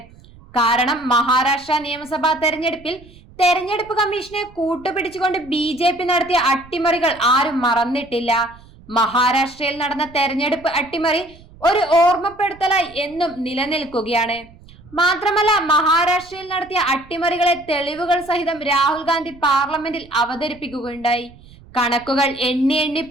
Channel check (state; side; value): noise; right; rumble, 23 dB below the sound